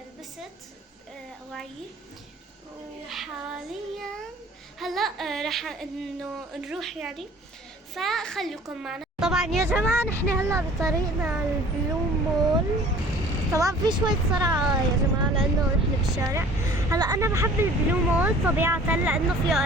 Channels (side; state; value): both; normal; correlation 0.49